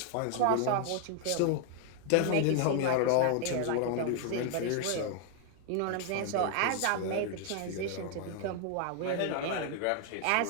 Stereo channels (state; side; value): different; both; correlation 0.00